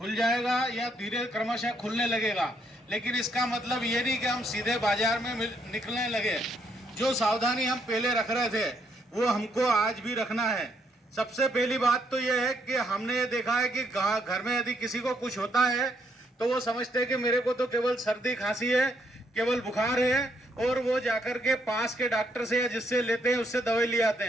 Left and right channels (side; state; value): both; normal; correlation 0.73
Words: या धीरे क्रमशः खुलने लगेगा, लेकिन इसका मतलब ये नहीं कि हम सीधे बाजार में निकलने लगे। जो सावधानी हम पहले रख रहे थे वो हमको आज भी रखना है। सबसे पहली बात तो ये है कि हमने ये देखा है कि घर में यदि किसी को कुछ होता है तो वो समझते हैं कि मेरे को तो केवल सर्दी खांसी है, केवल बुखार है, और वो जाकर के पास के डॉक्टर से या जिससे लेते हैं उससे दवाई ले आते